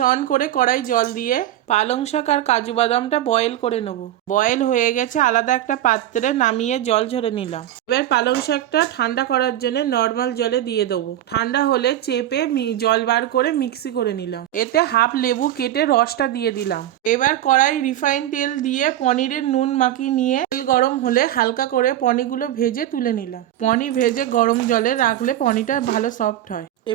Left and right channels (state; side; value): quieter; left; 12.7 dB